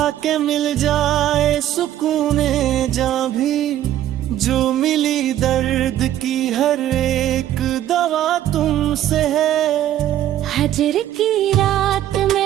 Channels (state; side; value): quieter; left; 12.2 dB